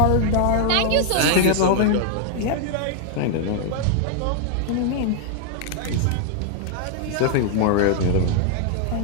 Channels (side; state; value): both; different; correlation 0.00